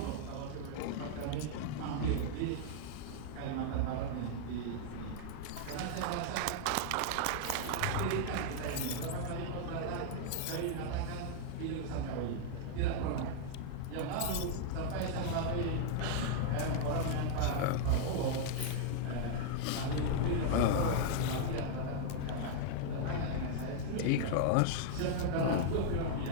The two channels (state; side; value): different; both; correlation -0.01